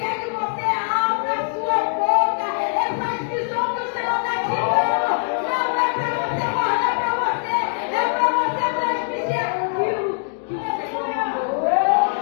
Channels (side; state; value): right; silent; digital silence